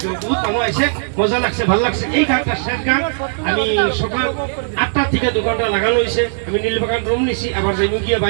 বহুত মানুষ আছে, মজা লাগছে, ভাল লাগছে। এই গানটা শেষ গান, আমি সকাল 8টা থেকে 2 ঘন্টা লাগানো হয়েছে। আমি নীলবাগান রুম নিছি, আবার যাই গিয়ে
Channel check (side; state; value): left; silent; digital silence